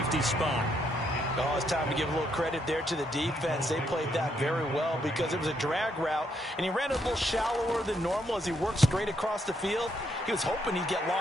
spot. Oh, it's time to give a little credit there to the defense. They played that very well because it was a drag route, and he ran a little shallower than normal as he worked straight across the field. He was hoping he'd get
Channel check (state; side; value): normal; both; correlation 0.75